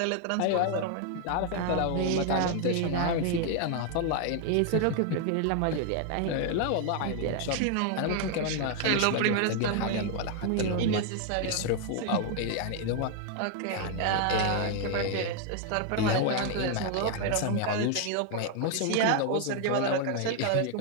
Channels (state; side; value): different; both; correlation 0.00